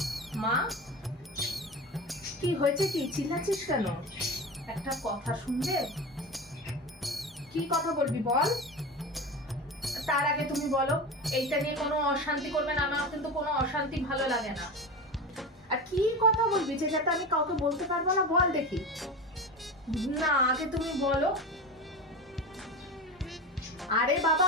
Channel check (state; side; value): normal; both; correlation 0.26